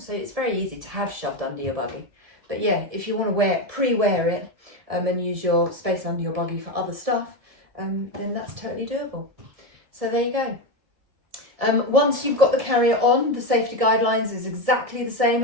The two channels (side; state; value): left; late; 1.7 ms